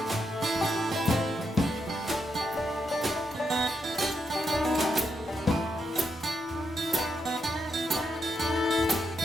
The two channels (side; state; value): both; normal; correlation 0.81